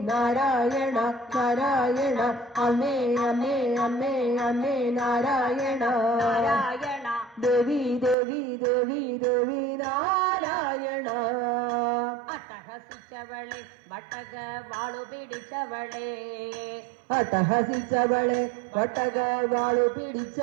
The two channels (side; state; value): left; drops out; at 8.2 s